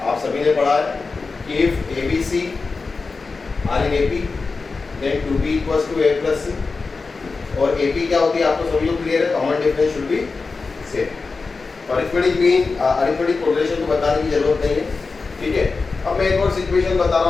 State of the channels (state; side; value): quieter; right; 4.2 dB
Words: आप सभी ने पढ़ा है कि if a b c are in A P then two b equals to a plus c, और ए पी क्या होती है आपको सभी को क्लियर है। Common difference should be same. Arithmetic correlation को बताने की जरूरत नहीं है, ठीक है। अब मैं एक और सिचुएशन बता